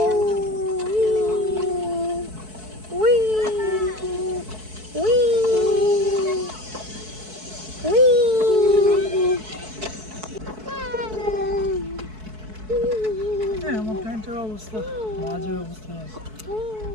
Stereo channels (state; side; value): late; left; 4.6 ms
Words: we we we হ্যাঁ আমার প্যান্টের অবস্থা বাজে অবস্থায় আছে